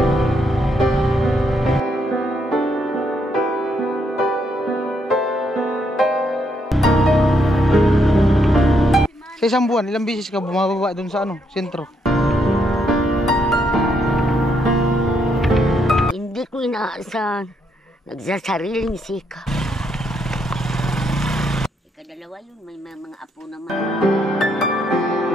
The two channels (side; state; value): both; normal; correlation 0.75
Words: Sa isang buwan, ilang beses ka bumababa doon sa ano, sentro? Hindi ko inaasahan. Nagsasariling sika. Ikadalawa yun, may mga apo naman.